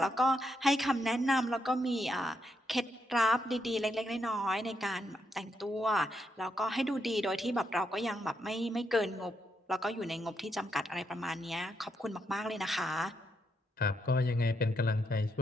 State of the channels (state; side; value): normal; both; correlation 0.80